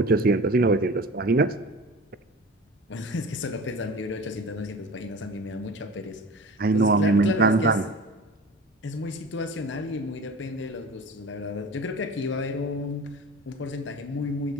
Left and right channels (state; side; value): normal; both; correlation 0.37